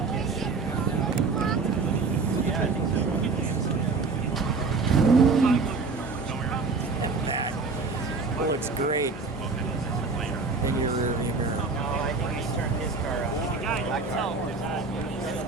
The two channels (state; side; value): quieter; left; 4.3 dB